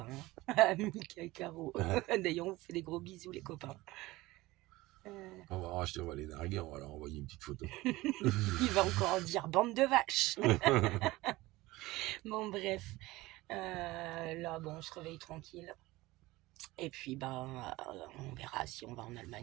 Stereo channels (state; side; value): quieter; left; 19.4 dB